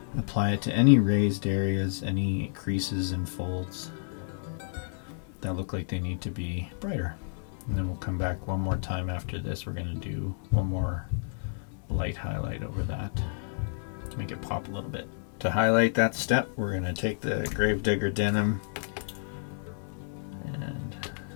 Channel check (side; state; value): right; silent; 58 dB below the other